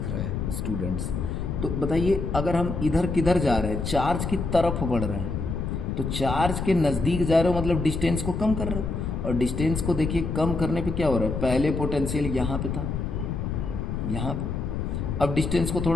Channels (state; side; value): noise; left; rumble, 3 dB below the sound